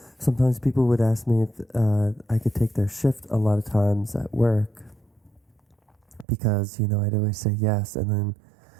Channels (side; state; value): left; drops out; at 6.2 s